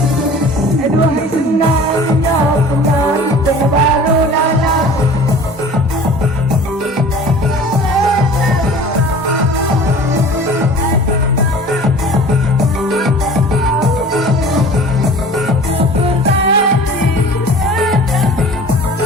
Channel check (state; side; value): normal; both; correlation 0.44